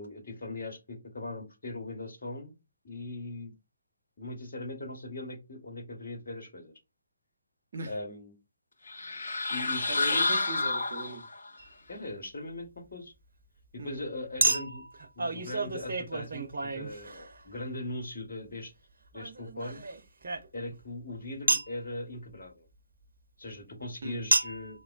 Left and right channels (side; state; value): both; inverted; correlation -0.82